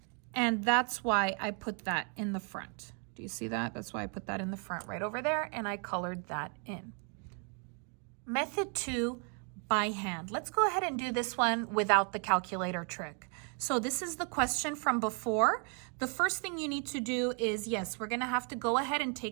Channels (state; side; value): quieter; left; 39.6 dB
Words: And that's why I put that in the front. Do you see that? That's why I put that in the front right over there, and I colored that in. Method 2, by hand. Let's go ahead and do this one without the calculator trick. So this is the question from before. The first thing you need to do is, yes, we're gonna have to go ahead and